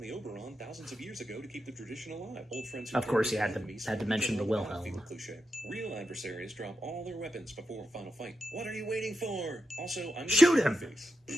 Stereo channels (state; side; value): normal; both; correlation 0.87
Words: Oberon thousands of years ago to keep the tradition alive. Old friends who Of course, turned you had to- enemies had to mention the became a Wilhelm. battlefield cliche. Real adversaries drop all their weapons before a final fight. What are you waiting for? Also, I'm gonna Shoot your him! face. We